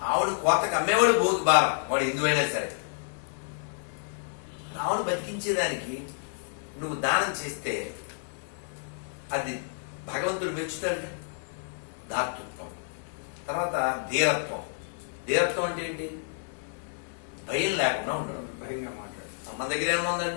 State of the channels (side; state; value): right; silent; digital silence